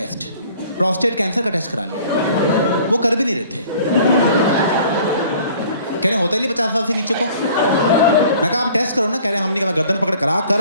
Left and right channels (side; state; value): both; inverted; correlation -0.52